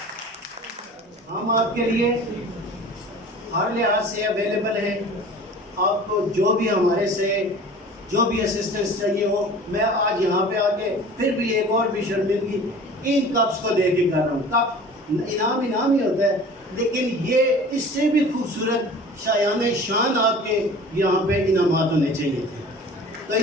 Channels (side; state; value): both; normal; correlation 0.43